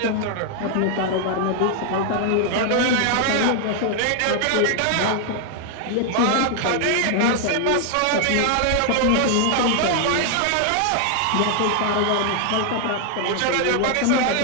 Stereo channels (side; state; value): both; different; correlation 0.00